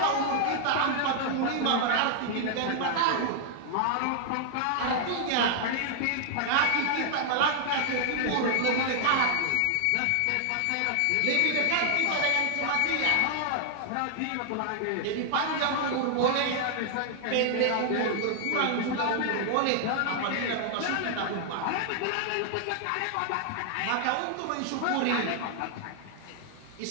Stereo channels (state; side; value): different; both; correlation -0.01